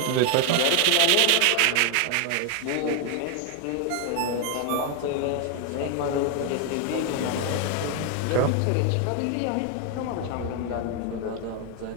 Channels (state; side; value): different; both; correlation 0.01